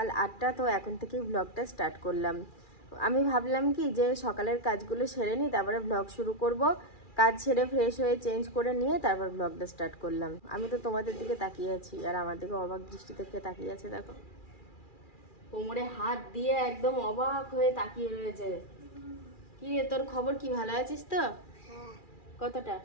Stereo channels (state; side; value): late; right; 2.4 ms